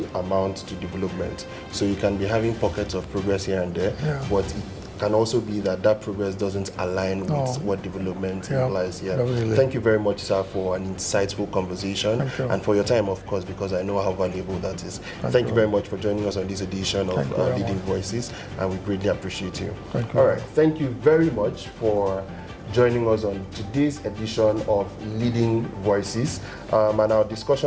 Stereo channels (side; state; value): both; identical; correlation 1.00